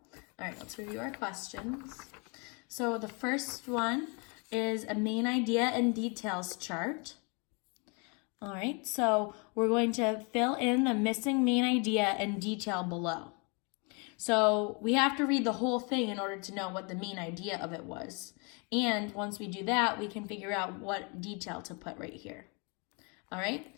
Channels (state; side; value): quieter; right; 33.5 dB